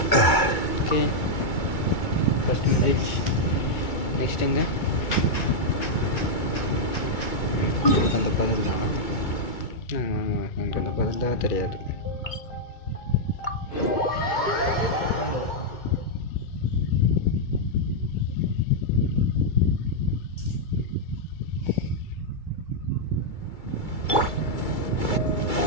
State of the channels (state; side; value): late; right; 2.3 ms